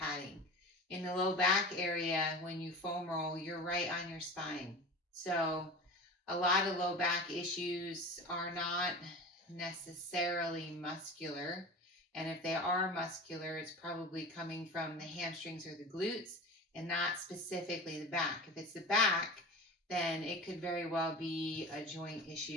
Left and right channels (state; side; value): normal; both; correlation 0.33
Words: In the low back area, when you foam roll, you're right on your spine. So a lot of low back issues are not necessarily muscular. And if they are muscular, it's probably coming from the hamstrings or the glutes and not specifically the back. If it's the back, then it could very well be a joint